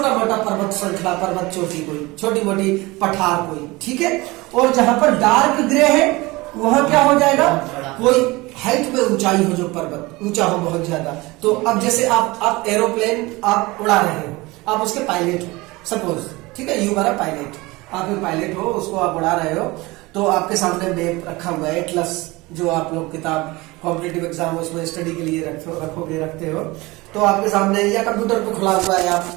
मोटा पर्वत श्रृंखला, पर्वत चोटी कोई, छोटी मोटी पठार कोई। ठीक है, और जहां पर डार्क ग्रे है वहां क्या हो जाएगा? कोई हाइट में ऊंचाई हो, जो पर्वत ऊंचा हो बहुत ज्यादा। तो अब जैसे आप एरोप्लेन आप उड़ा रहे हो, आप उसके पायलट हो सपोज, ठीक है, यू आर अ पायलट, आप एक पायलट हो, उसको आप उड़ा रहे हो, तो आपके सामने मैप रखा हुआ है, एटलस, जो आप लोग किताब कॉम्पिटिटिव एग्जाम उसमें स्टडी के लिए रखते हो, तो आपके सामने या कंप्यूटर पे खुला हुआ है,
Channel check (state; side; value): quieter; left; 22.2 dB